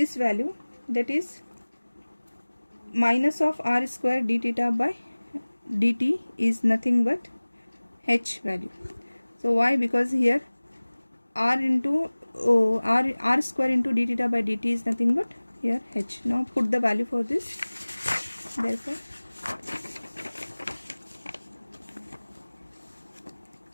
value, that is minus of r square d theta by dt, is nothing but h value. So why? Because here r into r square into d theta by dt is nothing but here h. Now put the value for this, therefore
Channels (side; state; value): both; inverted; correlation -1.00